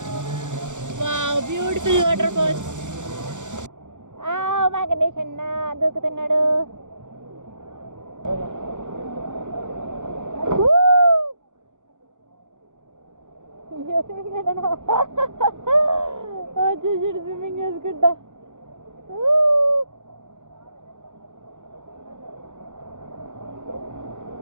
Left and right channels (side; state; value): left; late; 0.85 ms